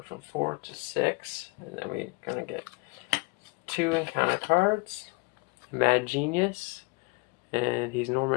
from 4 to 6. And then we're going to get 2 encounter cards. Mad Genius. And he's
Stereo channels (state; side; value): quieter; right; 28.5 dB